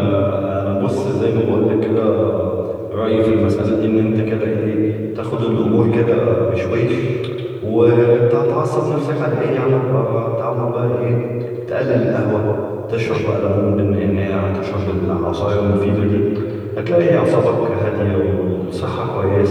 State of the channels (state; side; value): identical; both; correlation 1.00